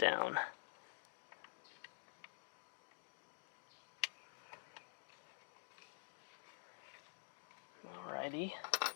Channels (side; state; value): right; silent; digital silence